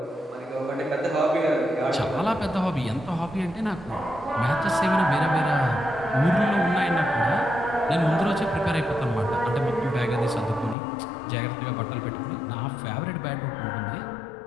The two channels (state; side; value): drops out; right; at 10.8 s